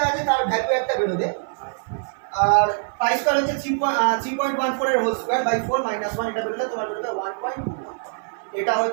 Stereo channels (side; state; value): left; silent; 56 dB below the other